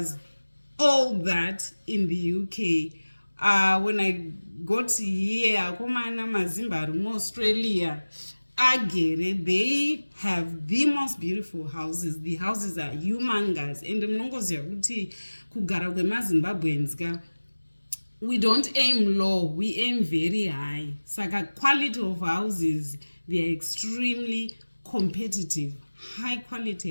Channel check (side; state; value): both; inverted; correlation -1.00